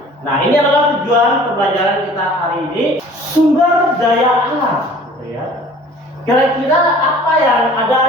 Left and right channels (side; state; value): both; normal; correlation 0.49